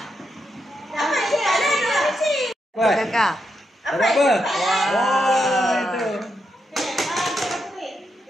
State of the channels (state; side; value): normal; both; correlation 0.83